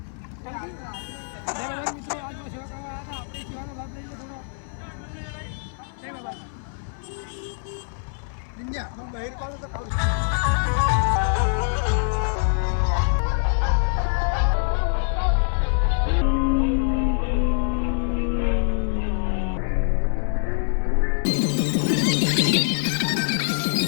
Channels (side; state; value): right; silent; 58 dB below the other